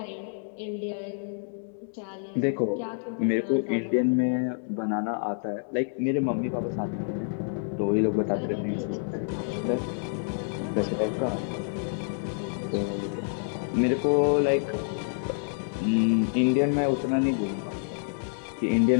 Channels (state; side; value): silent; right; digital silence